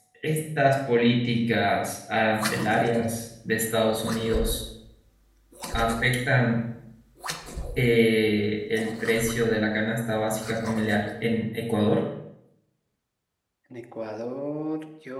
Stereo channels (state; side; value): identical; both; correlation 1.00